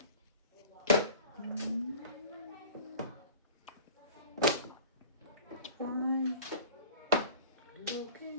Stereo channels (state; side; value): inverted; both; correlation -0.40